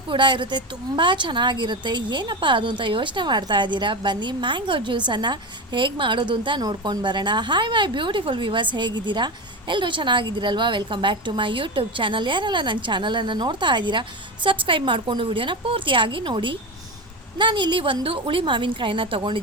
ಕೂಡ ಇರುತ್ತೆ, ತುಂಬ ಚೆನ್ನಾಗಿರುತ್ತೆ. ಏನಪ್ಪ ಅದು ಅಂತ ಯೋಚನೆ ಮಾಡ್ತಾ ಇದ್ದೀರಾ? ಬನ್ನಿ ಮ್ಯಾಂಗೋ ಜ್ಯೂಸನ್ನು ಹೇಗೆ ಮಾಡೋದು ಅಂತ ನೋಡ್ಕೊಂಡು ಬರೋಣ. ಹಾಯ್ ಮೈ ಬ್ಯೂಟಿಫುಲ್ ವ್ಯೂವರ್ಸ್, ಹೇಗಿದ್ದೀರಾ? ಎಲ್ಲರೂ ಚೆನ್ನಾಗಿದ್ದೀರಲ್ವಾ? Welcome back to my YouTube channel. ಯಾರೆಲ್ಲ ನನ್ನ ಚಾನಲನ್ನು ನೋಡ್ತಾ ಇದ್ದೀರಾ, ಸಬ್ಸ್ಕ್ರೈಬ್ ಮಾಡಿಕೊಂಡು ವಿಡಿಯೋನ ಪೂರ್ತಿಯಾಗಿ ನೋಡಿ. ನಾನಿಲ್ಲಿ ಒಂದು ಹುಳಿ ಮಾವಿನಕಾಯಿನ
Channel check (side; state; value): both; normal; correlation 0.21